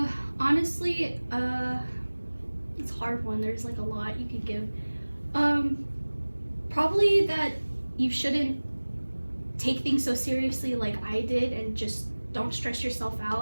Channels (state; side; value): inverted; both; correlation -1.00